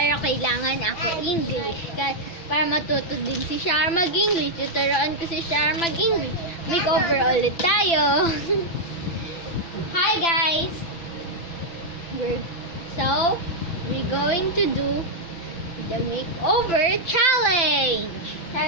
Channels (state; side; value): late; right; 5.9 ms